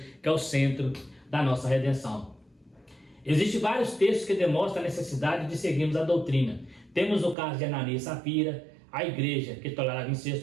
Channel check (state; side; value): drops out; left; at 7.4 s